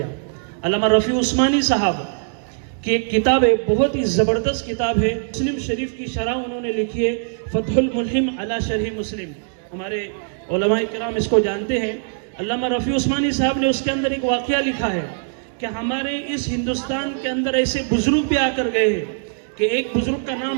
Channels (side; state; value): left; silent; digital silence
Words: अल्लामा रफ़ी उस्मानी साहब की एक किताब है, बहुत ही ज़बरदस्त किताब है, मुस्लिम शरीफ की शरह उन्होंने लिखी है, फतहुल मुल्हिम अला शरह मुस्लिम। हमारे उलमाए किराम इसको जानते हैं। अल्लामा रफ़ी उस्मानी साहब ने उसके अंदर एक वाक़या लिखा है कि हमारे इस हिंदुस्तान के अंदर ऐसे बुजुर्ग भी आकर गए हैं कि एक बुजुर्ग का